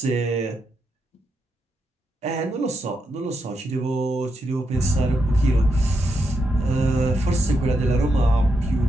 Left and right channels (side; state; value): both; normal; correlation 0.83